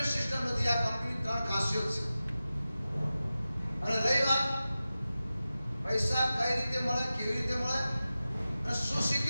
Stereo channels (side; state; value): both; inverted; correlation -0.94